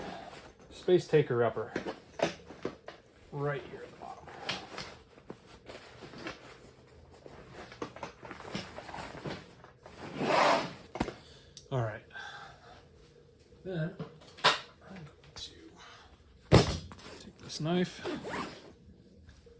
space taker upper right here at the bottom. All right, then I'm going to take this knife.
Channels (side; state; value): both; identical; correlation 1.00